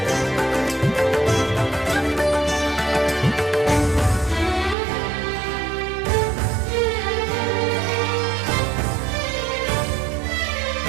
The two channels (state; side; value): drops out; left; at 4.8 s